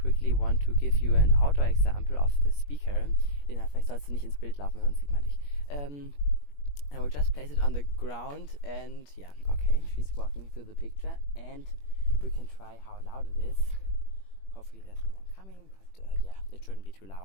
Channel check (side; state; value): right; late; 21 ms